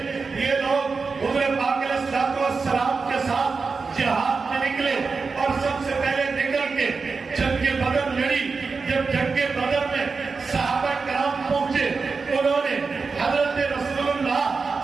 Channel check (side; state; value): left; quieter; 4.6 dB